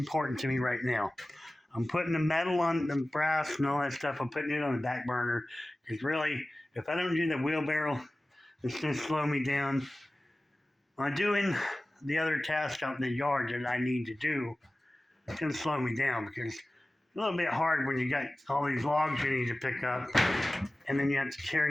to me right now. I'm putting the metal on the brass and all that stuff. I'm putting it on the back burner because really, if I don't do the wheelbarrow, it's going to slow me down. On doing the other tasks out in the yard that I need to do, it's going to slow me down because it's a little bit hard when you got all these logs you need to pick up, and then you have to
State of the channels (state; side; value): normal; both; correlation 0.97